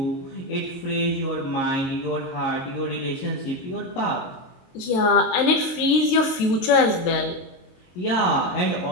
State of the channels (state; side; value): late; right; 22 ms